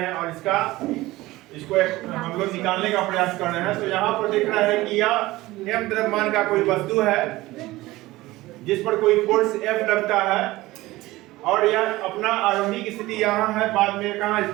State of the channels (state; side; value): quieter; left; 18.5 dB